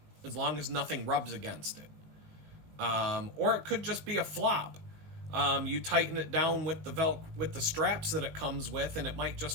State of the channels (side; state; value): left; late; 19 ms